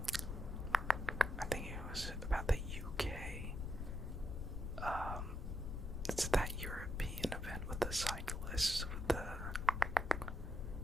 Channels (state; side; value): noise; left; rumble, 3 dB below the sound